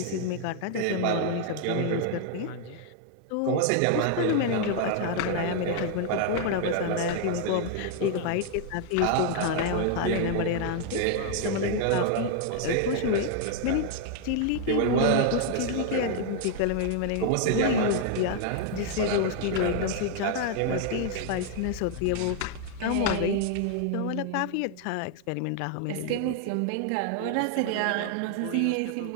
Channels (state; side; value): different; both; correlation 0.00